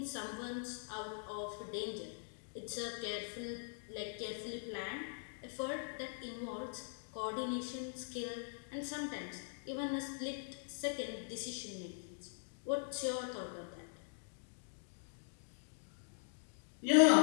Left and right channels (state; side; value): silent; right; digital silence